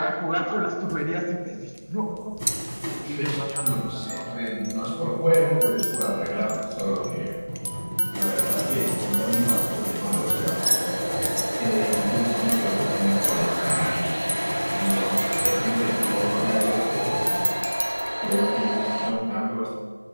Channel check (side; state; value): both; inverted; correlation -1.00